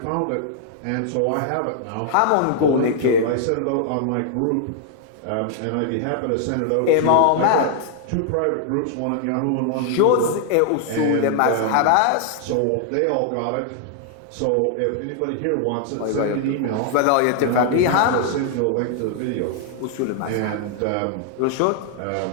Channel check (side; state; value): both; different; correlation 0.00